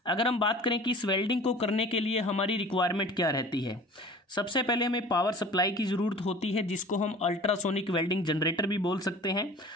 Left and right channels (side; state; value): both; normal; correlation 0.43